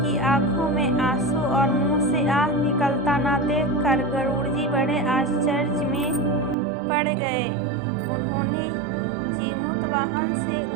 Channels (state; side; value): drops out; left; at 6.6 s